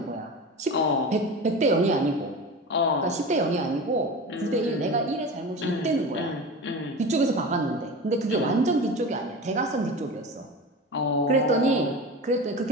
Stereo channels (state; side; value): normal; both; correlation 0.30